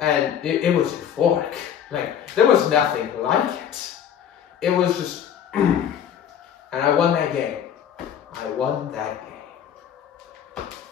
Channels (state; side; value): quieter; right; 9.0 dB